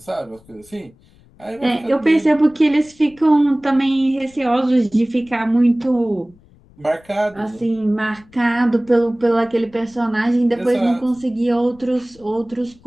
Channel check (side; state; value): left; noise; rumble, 28 dB below the sound